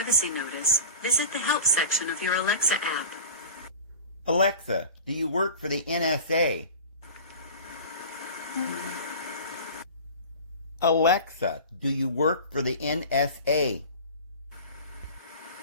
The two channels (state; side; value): inverted; both; correlation -0.36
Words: notice, visit the help section of your Alexa app. Alexa, do you work for the NSA? Alexa, do you work for the NSA?